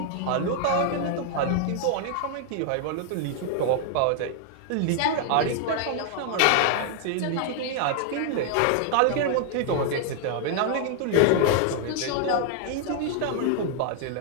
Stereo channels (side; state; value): both; different; correlation 0.00